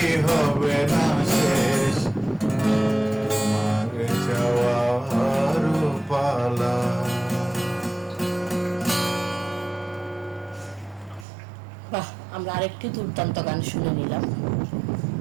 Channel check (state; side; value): drops out; left; at 11.2 s